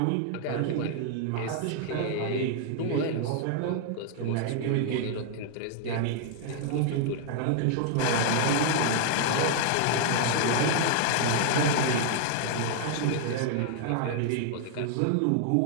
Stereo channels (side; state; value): both; different; correlation 0.00